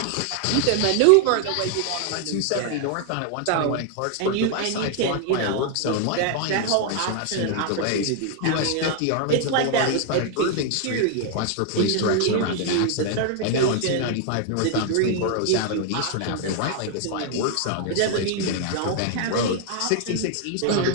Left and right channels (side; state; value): both; different; correlation 0.00